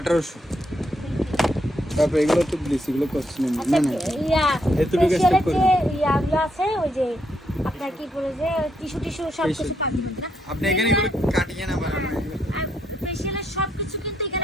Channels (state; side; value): normal; both; correlation 0.77